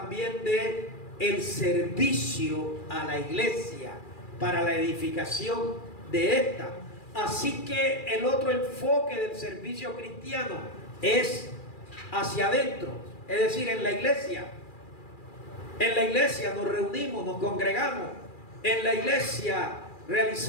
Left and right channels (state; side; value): late; right; 2.4 ms